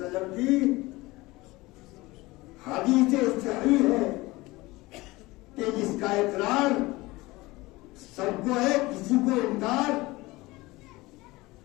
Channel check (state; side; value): quieter; right; 20.9 dB